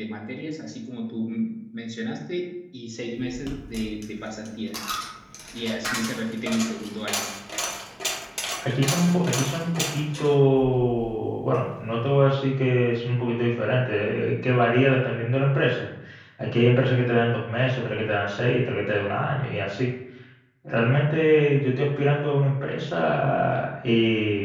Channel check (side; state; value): both; identical; correlation 1.00